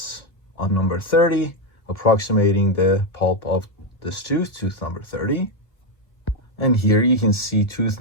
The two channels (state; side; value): late; right; 1.6 ms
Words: on number 30, approximating the pulp of this tooth, tooth number 30. And here you can see tooth